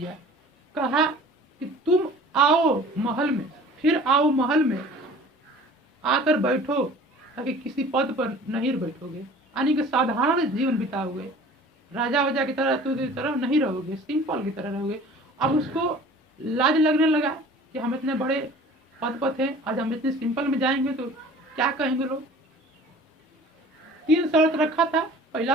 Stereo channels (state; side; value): normal; both; correlation 0.46